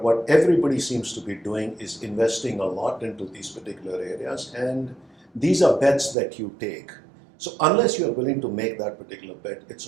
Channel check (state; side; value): drops out; left; at 6.2 s